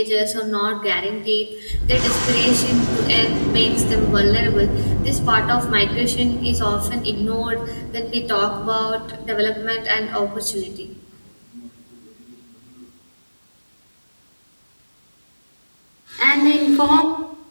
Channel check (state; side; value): inverted; both; correlation -1.00